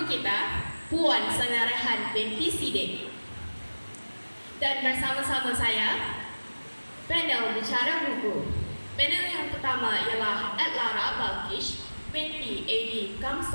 kita, Puan Sangarahan binti Sidik. Dan bersama-sama saya, panel bicara buku. Panel yang pertama ialah Adlara Balkish binti A.D.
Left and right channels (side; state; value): both; inverted; correlation -1.00